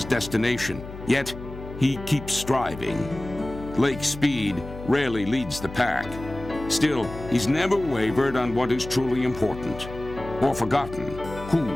destination. Yet, he keeps striving. Lake Speed rarely leads the pack. Still, he's never wavered on what is truly important, or forgotten who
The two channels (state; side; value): noise; left; hum, 13 dB below the sound